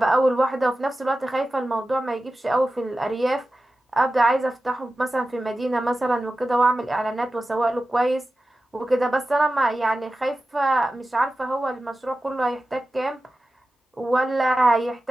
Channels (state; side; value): normal; both; correlation 0.94